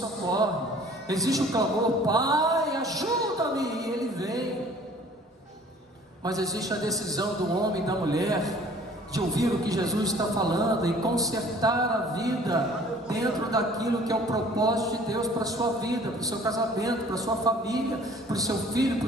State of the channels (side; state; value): both; normal; correlation 0.52